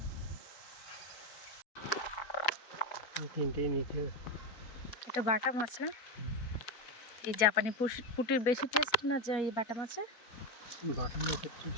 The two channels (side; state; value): right; late; 4.6 ms